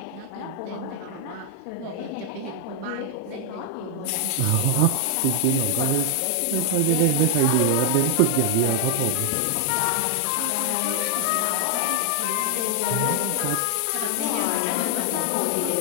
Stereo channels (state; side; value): different; both; correlation 0.00